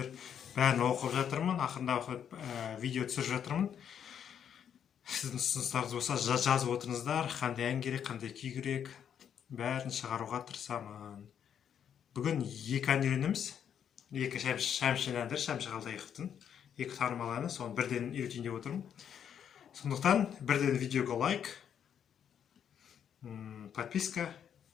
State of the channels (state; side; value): quieter; right; 8.6 dB